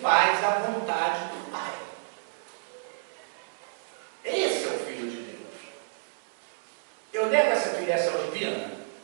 faz a vontade do Pai. Esse é o Filho de Deus. Eu nego essa filiação divina?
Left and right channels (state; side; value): silent; left; digital silence